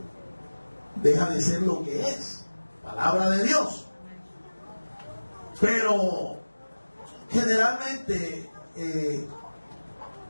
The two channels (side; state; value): both; inverted; correlation -1.00